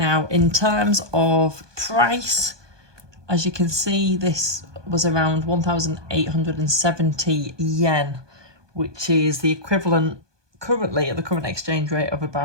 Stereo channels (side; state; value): left; late; 1.2 ms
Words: in terms of price, as you can see, this was around 1,870 yen, which is the equivalent currently at the current exchange rate of